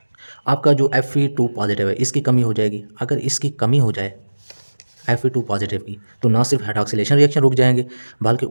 आपका जो Fe2 पॉजिटिव है इसकी कमी हो जाएगी। अगर इसकी कमी हो जाए Fe2 पॉजिटिव की, तो ना सिर्फ हाइड्रॉक्सिलेशन रिएक्शन रुक जाएंगे, बल्कि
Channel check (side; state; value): both; inverted; correlation -1.00